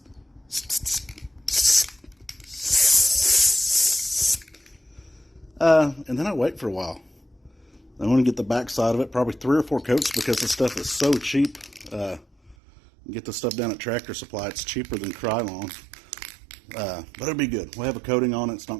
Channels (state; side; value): drops out; left; at 12.6 s